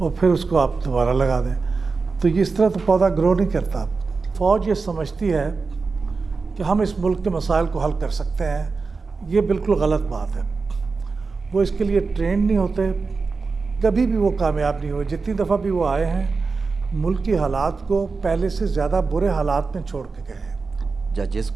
پھر اس کو آپ دوبارہ لگا دیں. تو یہ اس طرح تو پودا گرو نہیں کرتا. فوج یہ سمجھتی ہے کہ ہم اس ملک کے مسائل کو حل کر سکتے ہیں. یہ بالکل غلط بات ہے. وہ اس کے لیے ٹرینڈ نہیں ہوتے, کبھی بھی وہ کامیاب نہیں ہوئے. جتنی دفعہ بھی وہ آئے ہیں ملک کی حالات کو پہلے سے زیادہ برے حالات میں چھوڑ کے گئے ہیں. ججز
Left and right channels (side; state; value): left; quieter; 4.4 dB